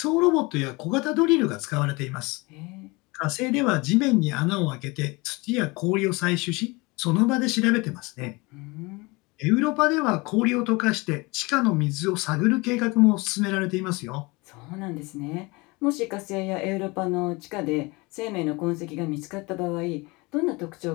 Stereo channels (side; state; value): right; quieter; 25.1 dB